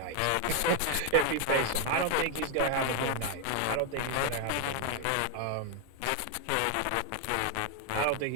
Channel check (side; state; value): both; different; correlation 0.00